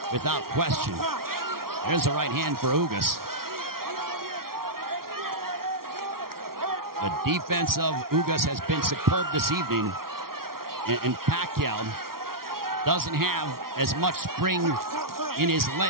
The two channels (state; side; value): late; left; 0.93 ms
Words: without question. There's a right hand for Ugas. The defense of Ugas has been superb this evening. And Pacquiao doesn't have as much spring in his